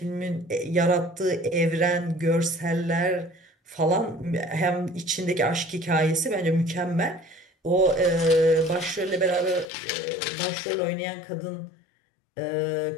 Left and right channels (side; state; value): right; drops out; at 9.7 s